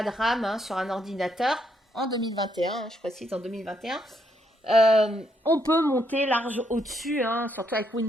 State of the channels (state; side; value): normal; both; correlation 0.75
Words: de RAM hein, sur un ordinateur. En 2021, je précise, en 2021. On peut monter large au-dessus, hein, surtout avec